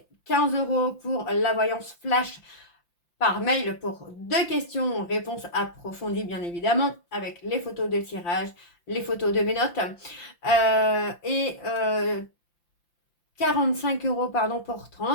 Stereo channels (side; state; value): right; late; 5.8 ms